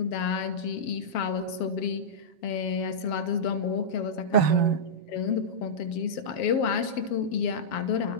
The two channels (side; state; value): right; late; 7.3 ms